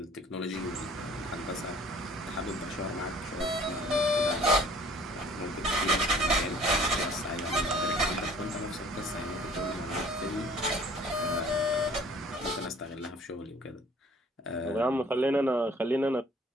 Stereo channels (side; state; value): both; normal; correlation 0.53